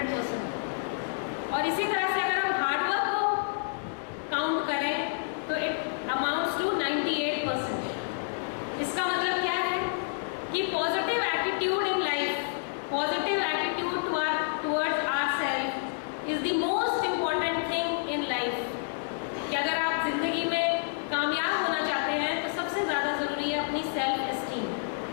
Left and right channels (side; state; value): right; silent; digital silence